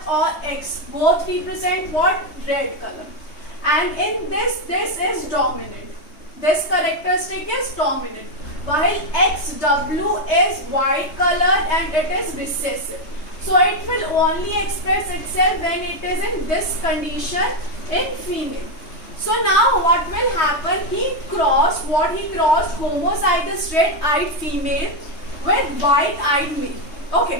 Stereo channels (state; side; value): late; right; 3.2 ms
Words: or X both represent what? Red color. And in this is dominant. This characteristic is dominant. While XW is white color and it is recessive. So it will only express itself when it is in this condition in female. So now what will happen? He crossed homozygous red-eyed female with white-eyed male.